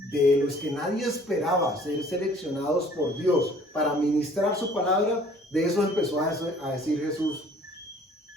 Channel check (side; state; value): both; normal; correlation 0.54